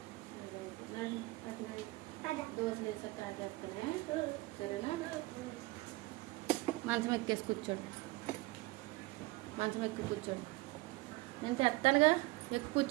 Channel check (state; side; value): quieter; left; 21.6 dB